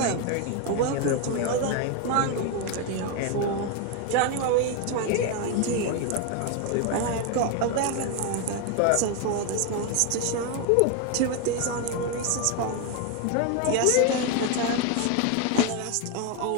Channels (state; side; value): different; both; correlation 0.01